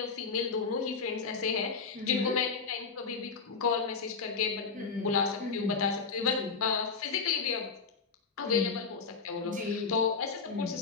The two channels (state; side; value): quieter; right; 5.1 dB